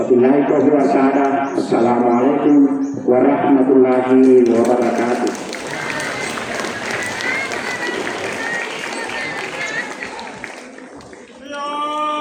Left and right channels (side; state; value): both; identical; correlation 1.00